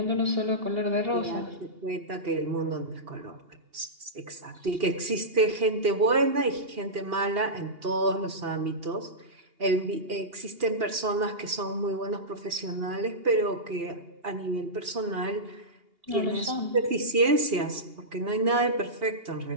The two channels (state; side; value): late; left; 2.8 ms